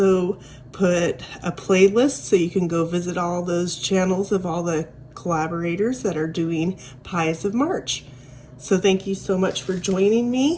put a playlist so you can go visit all those channels of all the collaborators that are doing Pies of March. So thank you so much for joining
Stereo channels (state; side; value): identical; both; correlation 1.00